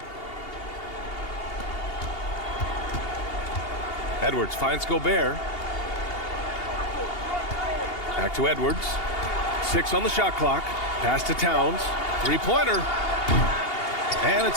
Edwards finds Gobert. Back to Edwards. 6 on the shot clock. Pass to Towns. 3-pointer. And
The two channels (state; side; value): late; right; 2.8 ms